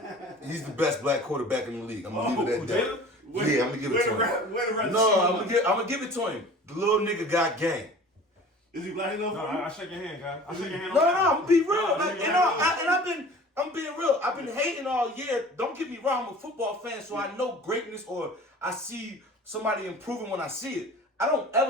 He's the best black quarterback in the league. I'm gonna leave it at that. Yeah, I'm gonna give it to him. No, I'm gonna give it to him. The little nigga got game. Is he black enough? No, I shake your hand, guy. I shake your hand. No, I'm gonna be real. I'm being real. I've been hating all year. Don't get me wrong. I'm a football fan, so I know greatness or I see somebody improving when I see it. I don't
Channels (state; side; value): normal; both; correlation 0.43